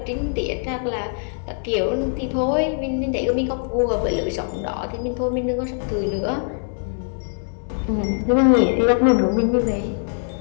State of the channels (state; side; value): silent; right; 64 dB below the other